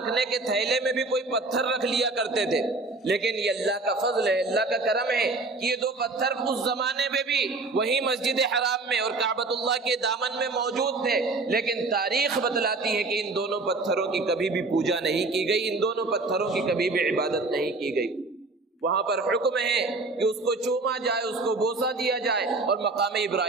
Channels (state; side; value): quieter; left; 3.5 dB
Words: کے تھیلے میں بھی کوئی پتھر رکھ لیا کرتے تھے۔ لیکن یہ اللہ کا فضل ہے، اللہ کا کرم ہے کہ یہ دو پتھر اس زمانے میں بھی وہی مسجد حرام میں اور کعبۃ اللہ کے دامن میں موجود تھے، لیکن تاریخ بتلاتی ہے کہ ان دونوں پتھروں کی کبھی بھی پوجا نہیں کی گئی، ان دونوں پتھروں کی کبھی بھی عبادت نہیں کی گئی۔ وہاں پر حکم ہے کہ اس کو چوما جائے، اس کو بوسہ دیا جائے اور مقام